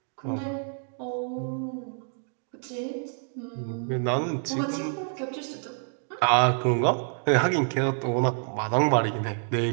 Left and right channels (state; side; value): silent; left; 57 dB below the other